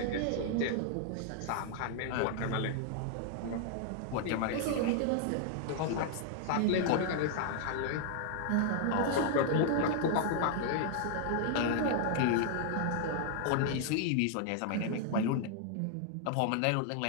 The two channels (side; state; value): both; different; correlation 0.00